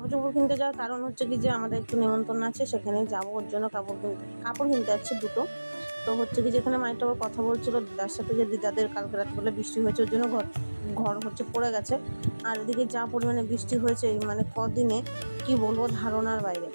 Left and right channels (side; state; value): both; inverted; correlation -1.00